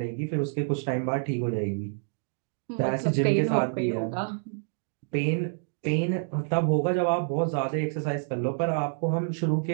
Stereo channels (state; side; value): silent; left; digital silence